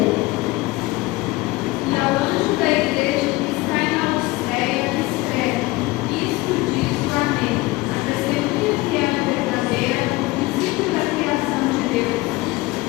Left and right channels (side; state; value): right; quieter; 20.8 dB